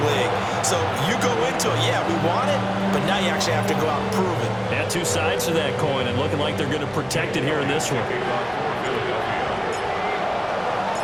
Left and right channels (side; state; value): both; identical; correlation 1.00